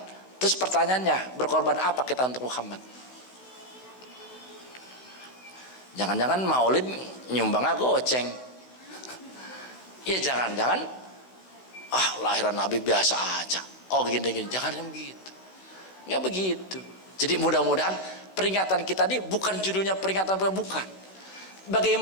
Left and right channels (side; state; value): right; late; 16 ms